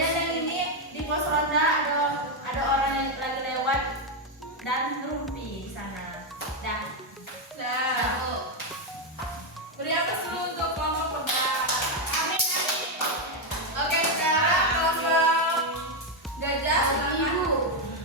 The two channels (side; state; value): both; normal; correlation 0.04